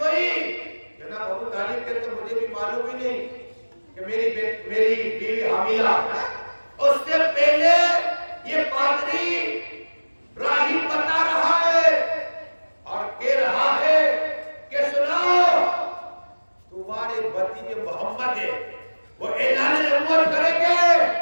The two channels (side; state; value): both; inverted; correlation -1.00